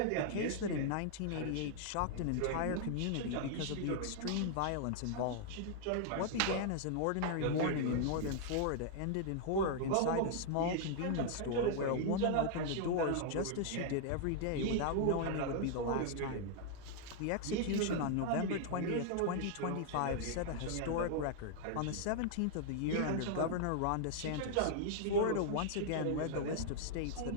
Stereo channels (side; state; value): both; different; correlation -0.01